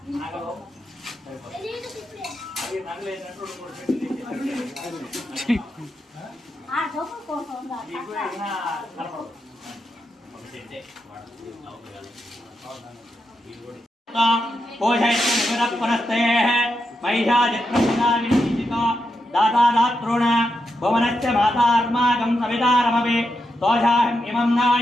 నగలు అది నగలేనట్టు दातादात्रोण भुवनस्य मातार्माकं सवितारमवे तोषाहम् इमं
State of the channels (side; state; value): both; normal; correlation 0.85